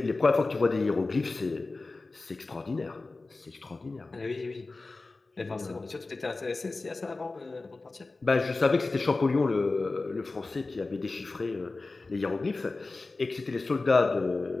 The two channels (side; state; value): right; quieter; 3.5 dB